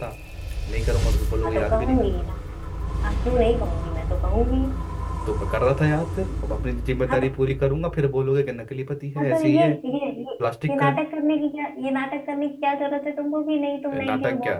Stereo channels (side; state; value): both; identical; correlation 1.00